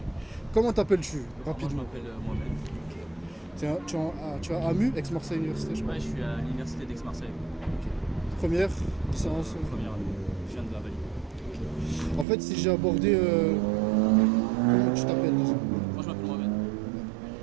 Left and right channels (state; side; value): drops out; left; at 12.2 s